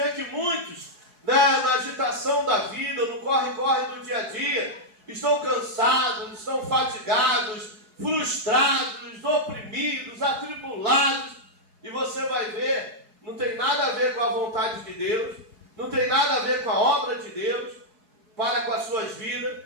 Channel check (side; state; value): left; late; 4.7 ms